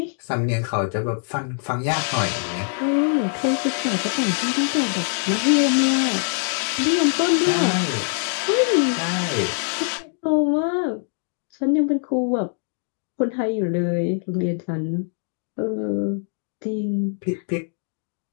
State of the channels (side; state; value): right; silent; 57 dB below the other